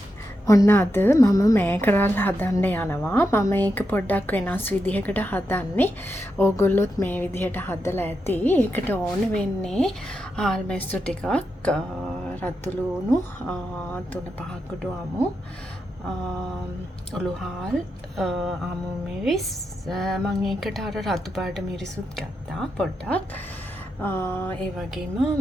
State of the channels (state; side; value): normal; both; correlation 0.86